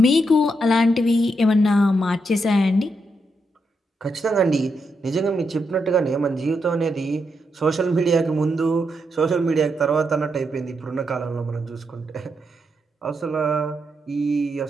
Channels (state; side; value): normal; both; correlation 0.82